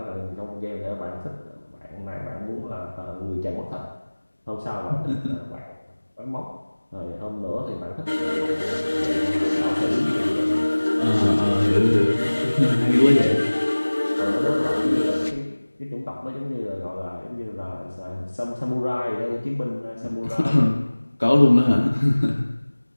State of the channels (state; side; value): inverted; both; correlation -1.00